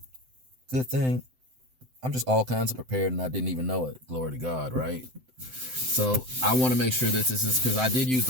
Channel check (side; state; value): left; late; 7.8 ms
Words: Good thing I'm just all kinds of prepared and I didn't even know it. Glory to God, right? So I want to make sure that this is, because I did use